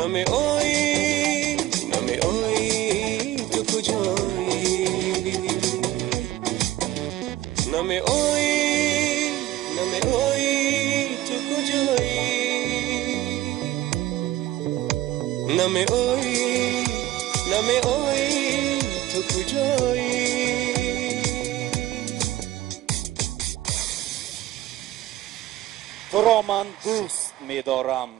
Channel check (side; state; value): left; quieter; 14.7 dB